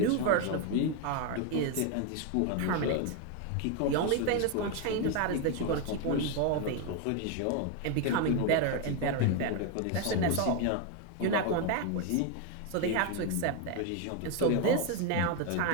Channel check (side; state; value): both; different; correlation 0.01